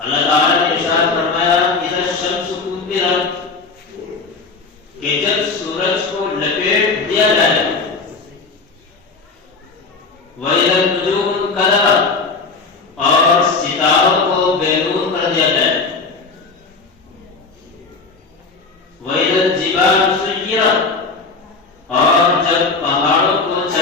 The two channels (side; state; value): right; quieter; 4.3 dB